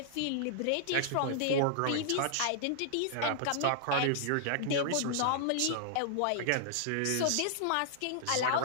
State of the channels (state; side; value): different; both; correlation -0.01